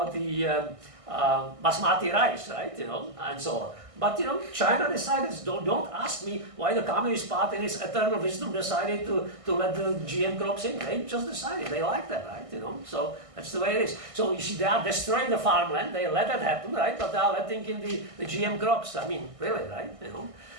basmati rice, right? You know, and so on. But you know, China decided. Don't ask me why the Communist Party, in its eternal wisdom, decided to let the GM crops in. They just decided they like that, right? You know, so that's the way it is. So you see, they are destroying the farmland. They let that happen, right? But they are letting in the GM crops. I mean, really, right? You know,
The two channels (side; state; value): left; late; 1.6 ms